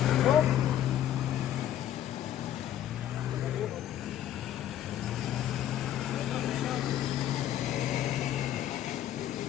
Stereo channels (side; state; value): right; quieter; 11.5 dB